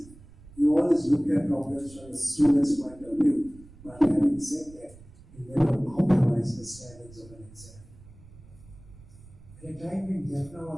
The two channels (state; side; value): noise; right; rumble, 21 dB below the sound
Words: He always looked at problems from the student's point of view, but having said that, he never compromised the standards of an exam. At a time when Jaffna